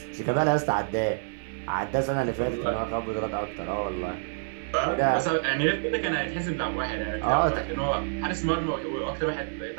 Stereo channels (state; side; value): silent; left; 56 dB below the other